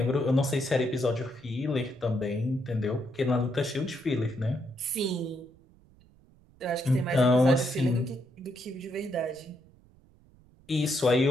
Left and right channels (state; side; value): noise; right; rumble, 28 dB below the sound